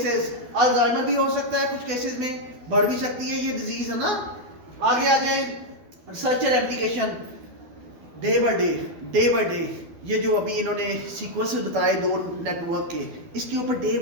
Alzheimer भी हो सकता है कुछ केसेस में, बढ़ भी सकती है ये डिजीज, है ना। आगे आ जाए research and application. Day by day ये जो अभी इन्होंने सीक्वेंसेस बताए दो नेटवर्क के, इसके ऊपर डे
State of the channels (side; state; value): left; late; 12 ms